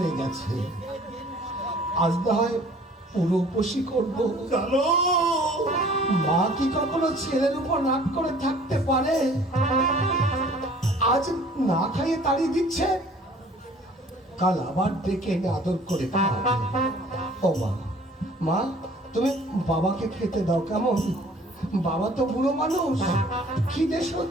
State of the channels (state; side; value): normal; both; correlation 0.52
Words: গেছে। আজ না হয় পুরো উপোসই করবো। জানো মা কি কখনো ছেলের উপর রাগ করে থাকতে পারে? আজ না খাইয়ে তাড়িয়ে দিচ্ছে, কাল আবার ডেকে এনে আদর করে খাওয়াবে। ও মা, মা তুমি বাবাকে খেতে দাও কেমন? বাবা তো বুড়ো মানুষ, খিদে